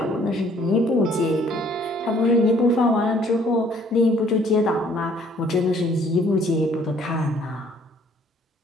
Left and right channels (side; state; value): both; normal; correlation 0.60